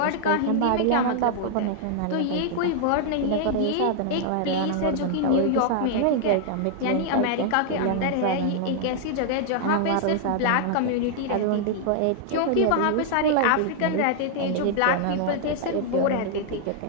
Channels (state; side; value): different; both; correlation -0.01